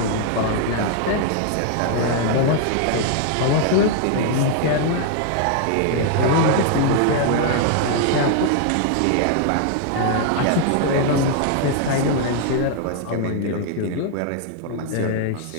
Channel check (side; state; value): both; different; correlation 0.00